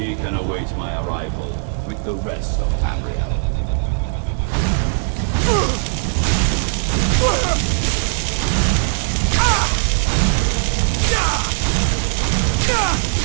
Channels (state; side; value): silent; left; 59 dB below the other